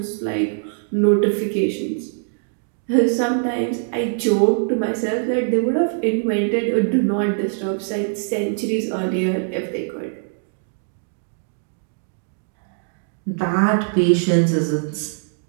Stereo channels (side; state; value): left; silent; digital silence